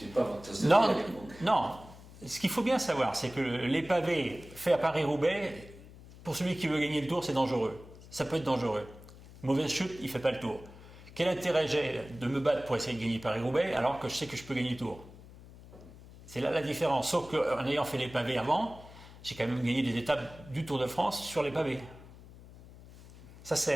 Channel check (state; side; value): noise; left; hum, 19 dB below the sound